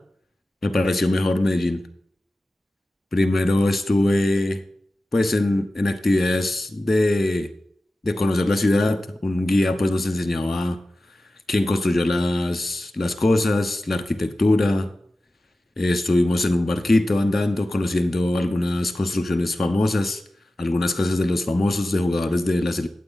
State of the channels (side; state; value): both; normal; correlation 0.95